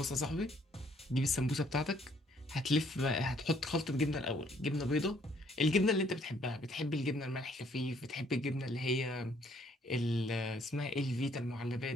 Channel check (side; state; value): both; normal; correlation 0.65